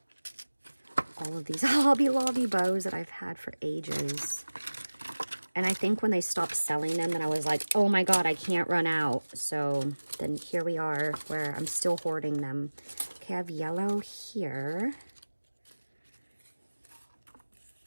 All of these Hobby Lobby bows that I've had for ages. And I think when they stopped selling them, then I was like, oh my God, I can't run out. So then here we are where I'm still hoarding them. Okay, I have yellow here.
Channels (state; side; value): inverted; both; correlation -1.00